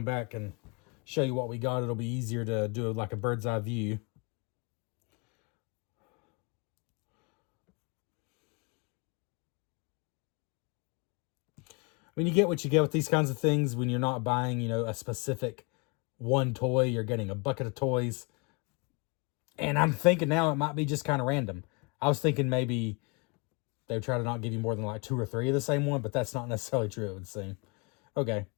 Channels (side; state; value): right; quieter; 30.8 dB